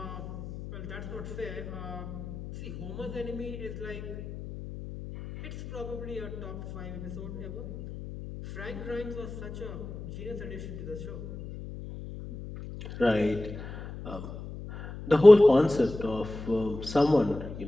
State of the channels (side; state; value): left; noise; hum, 10 dB below the sound